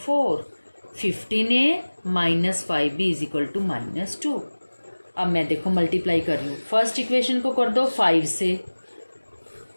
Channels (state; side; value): inverted; both; correlation -1.00